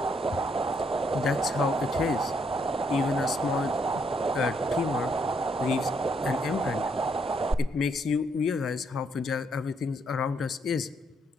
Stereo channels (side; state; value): both; normal; correlation 0.73